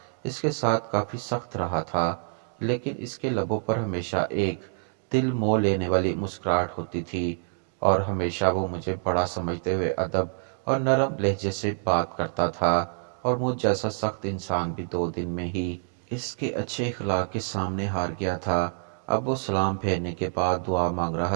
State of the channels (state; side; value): silent; left; digital silence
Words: इसके साथ काफ़ी सख्त रहा था, लेकिन इसके लबों पर हमेशा एक दिल मोह लेने वाली मुस्कुराहट होती थी और हमेशा वो मुझे बड़ा समझते हुए अदब और नरम लहजे से बात करता था। और मुझ जैसा सख्त इंसान भी 2 दिन में ही इसके अच्छे अखलाक के सामने हार गया था। अब वो सलाम फेरने के बाद दुआ मांग